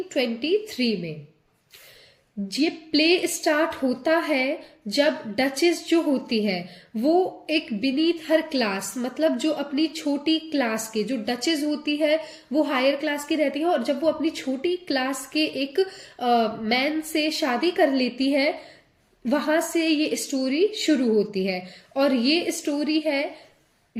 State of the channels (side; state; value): both; identical; correlation 1.00